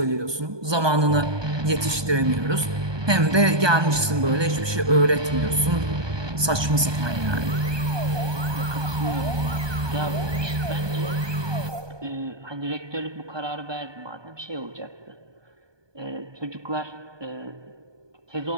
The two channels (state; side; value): late; left; 1.2 ms